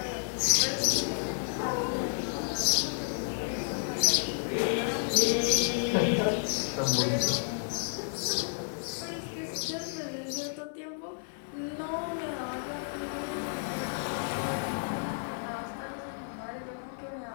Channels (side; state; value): right; silent; digital silence